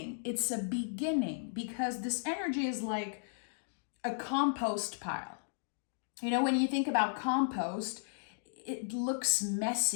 It's a beginning, because this energy is like a compost pile. You know, when you think about compost, it looks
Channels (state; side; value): silent; right; digital silence